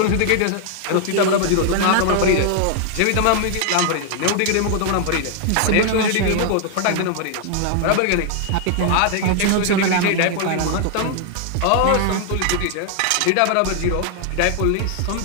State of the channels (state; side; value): different; both; correlation 0.00